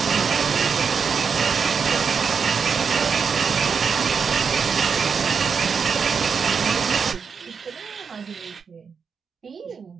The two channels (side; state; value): left; quieter; 6.0 dB